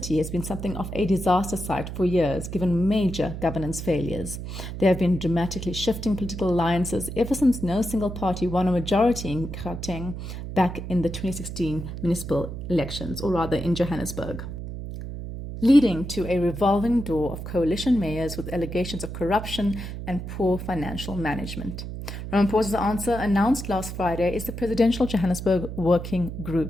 has been something of a disaster site for years, given major governance failures. There have been dramatically shifting political alliances ever since no single party won a majority in Gauteng back in the 2016 municipal elections, or rather in Johannesburg, leading to a revolving door of coalition mayors with allegations of corruption and poor financial management. Ramaphosa's answer, announced last Friday, is the Presidential Johannesburg Working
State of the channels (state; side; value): noise; right; hum, 8 dB below the sound